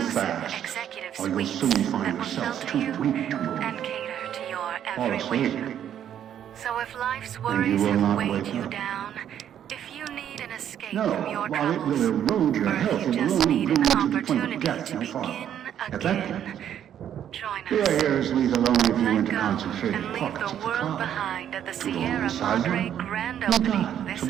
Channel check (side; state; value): left; quieter; 9.9 dB